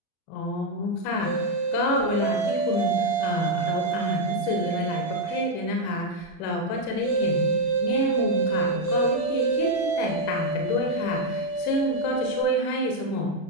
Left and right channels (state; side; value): late; right; 36 ms